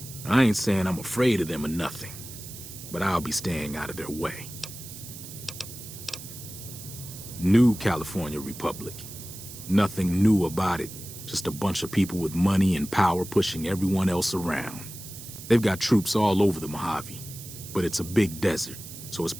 I ain't saying I'm afraid of them or nothing, but I'll be staying out of their way. New California Republic. Nothing new about it. Just a bunch of people with money and power pushing everyone else around. They've got troops all over the Mojave, but it's a big desert, so it's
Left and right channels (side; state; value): right; noise; hiss, 13 dB below the sound